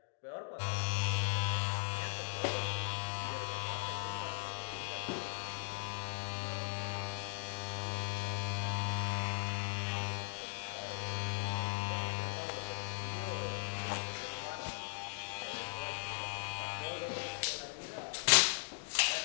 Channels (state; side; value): silent; right; digital silence